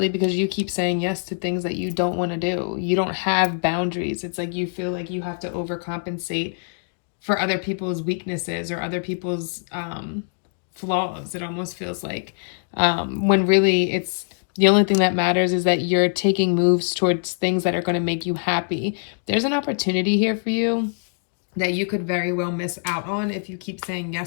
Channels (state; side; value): silent; right; digital silence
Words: because you keep saying yes to things that you don't want to do. You don't have boundaries. It's like you feel like you have to overcompensate for other people's weaknesses or other people's flaws. It almost feels like, when really it's the only thing that matters is that you're taking moves towards things that are going to make you happy. There's an opportunity here for you that you could very well miss out on if you keep saying